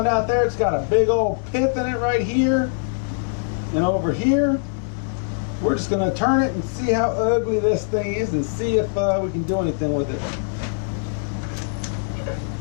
out there. It's got a big old pith in it right here and over here. We're just going to turn it and see how ugly this thing is and see if we can do anything with it.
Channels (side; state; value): right; silent; digital silence